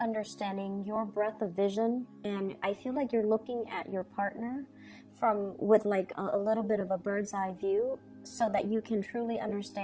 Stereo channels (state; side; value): identical; both; correlation 1.00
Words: your breadth of vision. And I feel like you're looking at your partner with like a little bit of a bird's eye view, so that you can truly